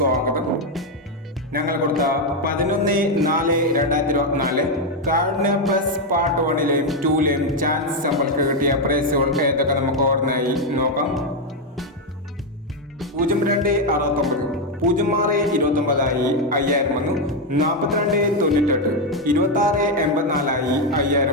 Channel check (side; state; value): both; normal; correlation 0.05